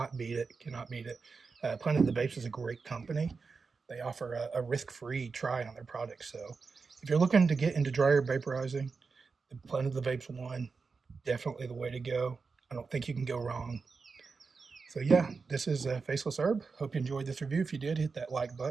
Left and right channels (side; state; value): left; quieter; 4.8 dB